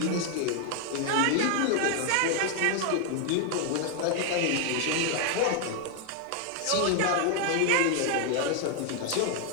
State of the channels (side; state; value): both; different; correlation 0.00